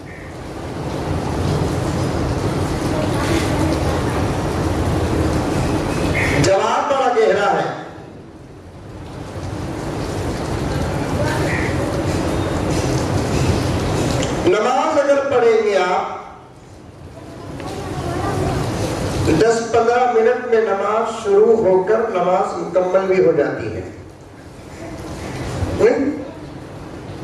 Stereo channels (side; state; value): both; identical; correlation 1.00